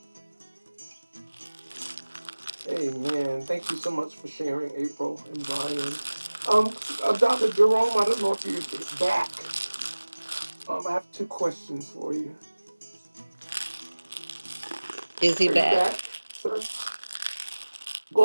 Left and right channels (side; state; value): both; inverted; correlation -1.00